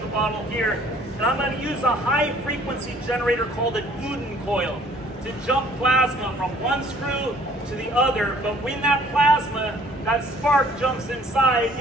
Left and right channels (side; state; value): both; normal; correlation 0.57